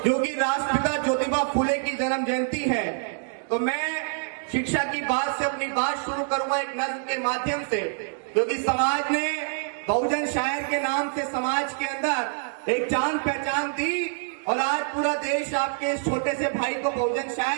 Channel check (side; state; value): left; silent; digital silence